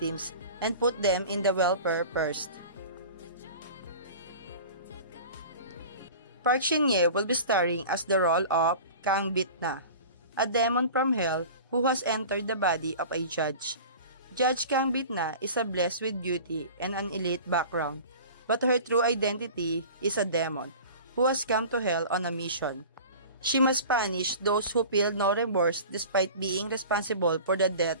and put them in the welfare first. Park Shin-hye will be starring as the role of Kang Bit-na, a demon from hell who has entered the body of a judge. Judge Kang Bit-na is blessed with beauty and an elite background, but her true identity is a demon who has come to hell on a mission. She must punish those who feel no remorse despite being responsible for the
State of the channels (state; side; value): inverted; both; correlation -0.39